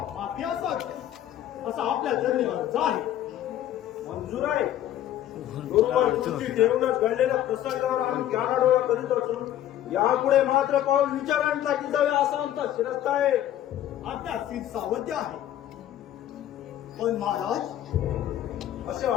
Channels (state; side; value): quieter; right; 12.0 dB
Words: माफी असत असा आपल्या जर्नीवर आहे. मंजूर आहे. बरोबर तुमची ठेवूनच घडलेल्या प्रसंगावर आम्ही कानाडोळा करीत असून यापुढे मात्र पाऊल विचारांचा की जावे असा आमचा शिरस्ता आहे. आपल्या सीट सावध्य आहे. पण महाराज, असे